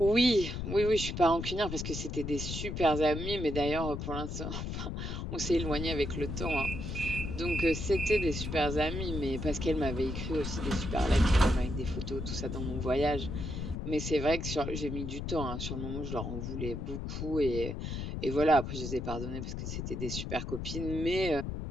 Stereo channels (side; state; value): left; noise; rumble, 5 dB below the sound